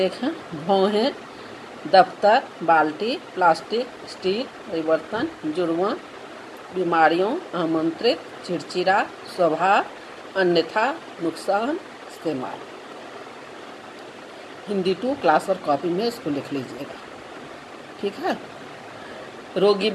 हैं। भौहें दफ्तर, बाल्टी, प्लास्टिक, स्टील, परिवर्तन, जुर्मा, बीमारियों, आमंत्रित, चिड़चिड़ा, स्वभाव, अन्यथा, नुकसान, इस्तेमाल। हिंदी 2 क्लास और कॉपी में इसको लिख लीजिएगा, ठीक है। रोगी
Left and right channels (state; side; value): identical; both; correlation 1.00